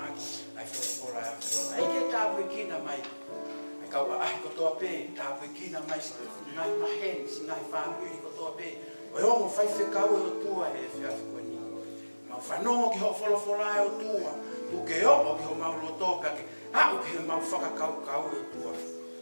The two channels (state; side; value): inverted; both; correlation -1.00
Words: aki. Ai whakora a whio. Ai ke tāpu e kina mai. Kau ai ko toa pe, tā pui kina mai si ngai mahen, si ngai whāmuri ko toa pe. O hongo whai whekau e o tua e whiawhi koe ni. Mau whanongo ki ho wholawhola e o tua. Tu ke o ki ho mau loto ka ke. Au ke mau whakakau e o tua.